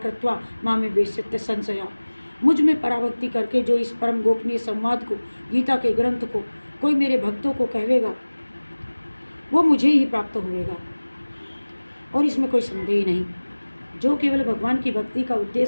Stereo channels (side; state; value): both; inverted; correlation -1.00